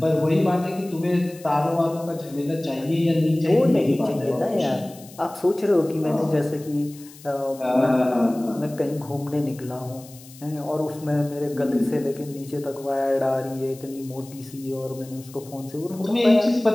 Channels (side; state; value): left; noise; hiss, 21 dB below the sound